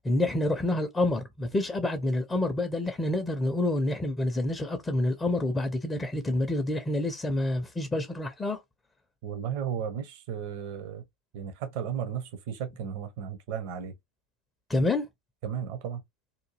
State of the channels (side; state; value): both; normal; correlation 0.69